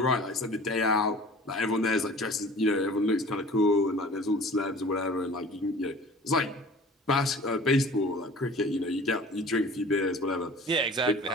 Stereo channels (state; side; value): normal; both; correlation 0.44